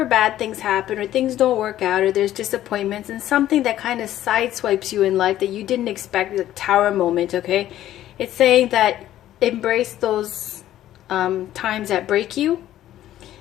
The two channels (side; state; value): right; quieter; 13.0 dB